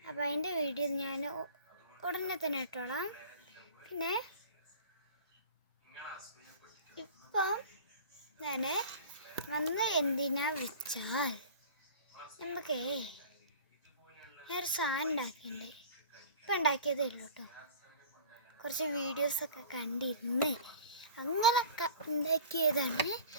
അപ്പോൾ അതിൻ്റെ വീഡിയോ ഞാൻ ഉടനെ തന്നെ ഇട്ടോളാം. പിന്നെ ഇപ്പം ഞാൻ എന്തിനാ വെച്ചാൽ ഞാനൊരു സാധനം ഉണ്ടാക്കിയിട്ടുണ്ട്. ഇപ്പം ഉണ്ടാക്കിയതേ ഉള്ളൂ കേട്ടോ. കുറച്ച് വീഡിയോസൊക്കെ കണ്ടിരുന്ന് അങ്ങനെയൊക്കെ ഉണ്ടാക്കിയതാണ്.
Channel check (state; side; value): inverted; both; correlation -0.41